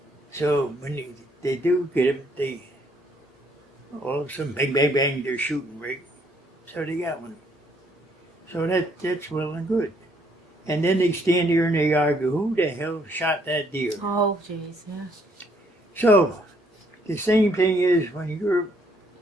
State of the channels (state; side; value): normal; both; correlation 0.68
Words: So when they do get them, they all of a sudden bang bang bang, they're shooting, right? So they got one. So that's well and good. And then they stand here and they argue, who the hell shot that deer? Oh, jeez, yeah. So the same thing is when you're